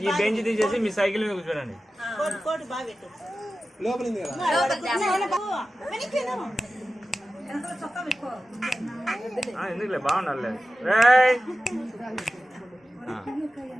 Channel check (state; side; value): normal; both; correlation 0.94